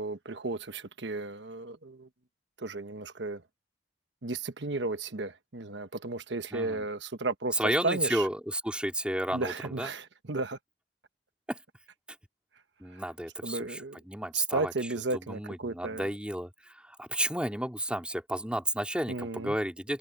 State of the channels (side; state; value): both; normal; correlation 0.29